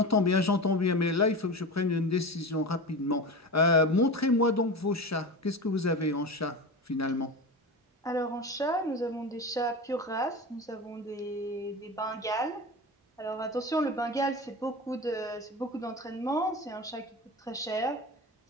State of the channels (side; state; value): both; normal; correlation 0.27